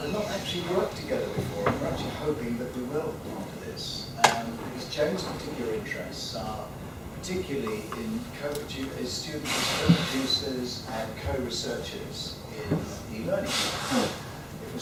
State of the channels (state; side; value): identical; both; correlation 1.00